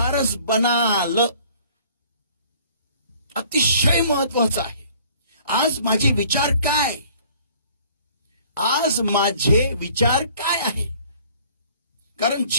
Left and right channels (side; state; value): both; inverted; correlation -0.54